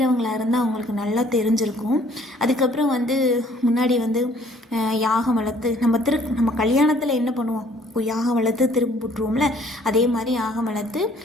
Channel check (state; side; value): normal; both; correlation 0.59